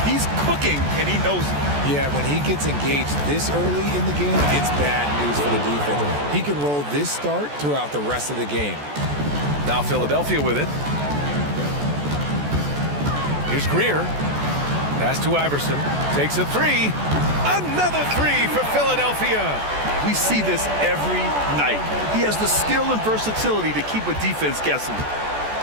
He's cooking, and he knows it. Yeah, when he gets engaged this early in the game, it's bad news for the defense. He can roll this start throughout the rest of the game. Now Philadelphia with it. Here's Greer. Pass to Iverson. Takes a 3. Another 3 for Philadelphia. We see this every night. He has the skill and versatility to keep a defense guessing.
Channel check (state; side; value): late; left; 14 ms